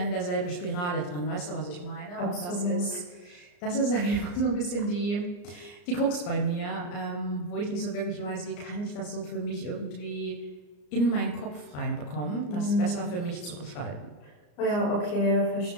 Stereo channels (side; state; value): right; late; 34 ms